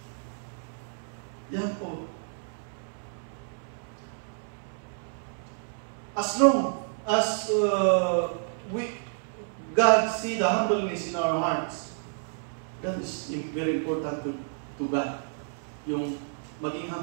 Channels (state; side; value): silent; left; 58 dB below the other